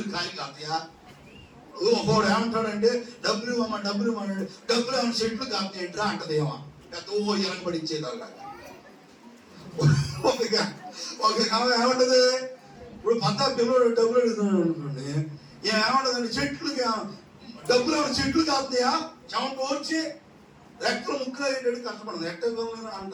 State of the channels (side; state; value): both; identical; correlation 1.00